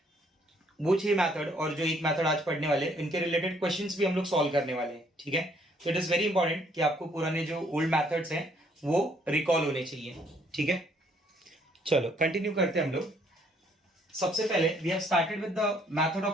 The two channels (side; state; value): both; normal; correlation 0.65